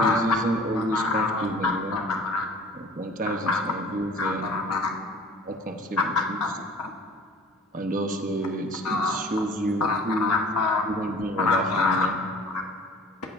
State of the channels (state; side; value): normal; both; correlation 0.48